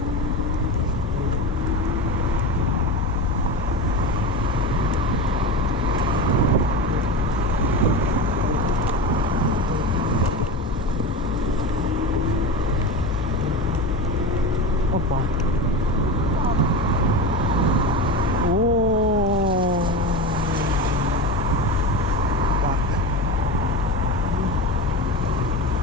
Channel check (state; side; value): normal; both; correlation 0.25